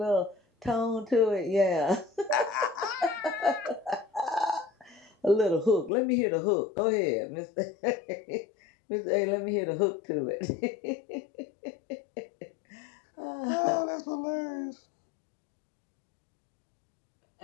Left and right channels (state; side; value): drops out; right; at 5.9 s